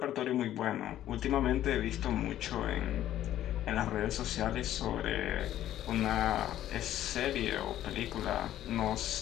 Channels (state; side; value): quieter; right; 12.5 dB